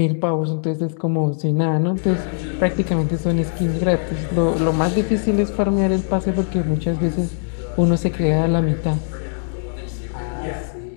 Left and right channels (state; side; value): silent; right; digital silence